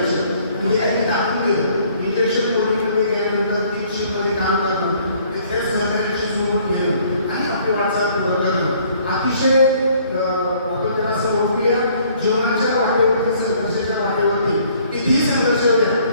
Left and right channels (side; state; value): both; inverted; correlation -0.60